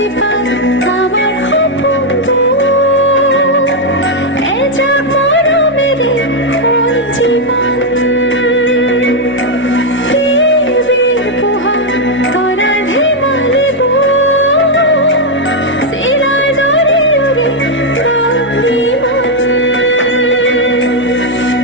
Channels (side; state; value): both; normal; correlation 0.01